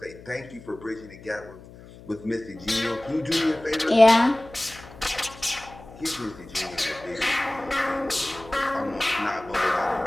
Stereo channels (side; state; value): left; noise; hum, 19 dB below the sound